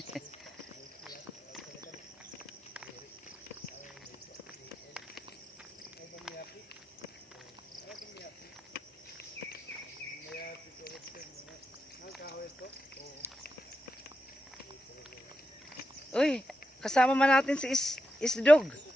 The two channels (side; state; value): both; normal; correlation 0.88